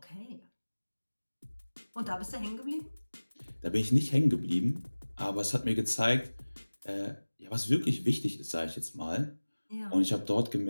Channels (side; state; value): both; inverted; correlation -1.00